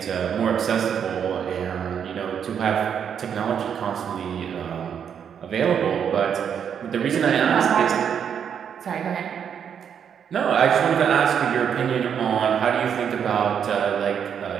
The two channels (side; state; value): left; quieter; 8.0 dB